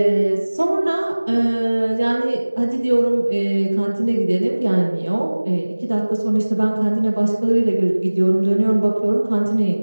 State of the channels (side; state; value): both; inverted; correlation -1.00